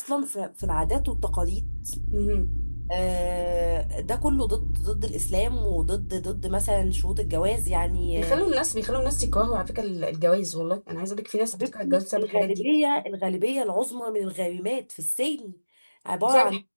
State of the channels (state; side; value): inverted; both; correlation -1.00